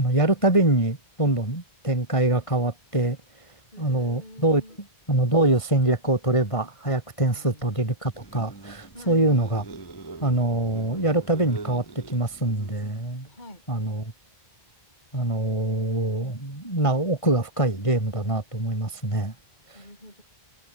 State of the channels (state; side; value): late; right; 1.5 ms